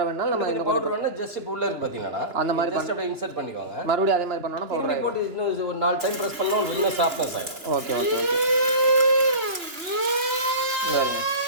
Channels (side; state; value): left; late; 2.9 ms